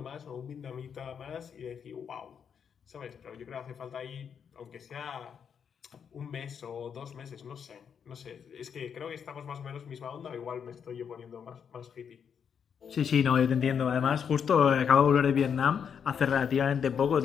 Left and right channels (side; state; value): right; quieter; 7.4 dB